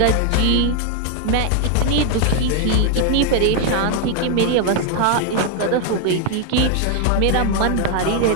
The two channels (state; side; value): different; both; correlation 0.00